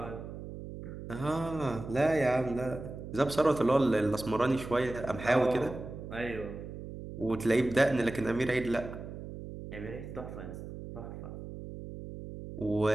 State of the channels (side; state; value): right; noise; hum, 10 dB below the sound